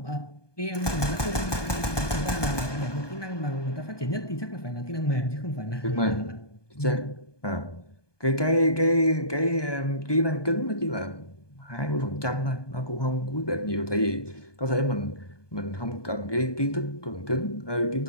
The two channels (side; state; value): right; late; 1.2 ms